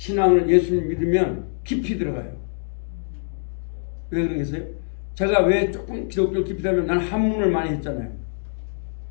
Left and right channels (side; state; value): right; silent; digital silence